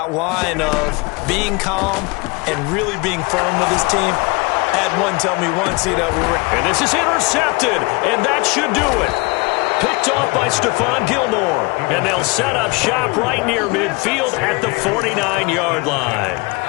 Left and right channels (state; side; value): quieter; right; 27.1 dB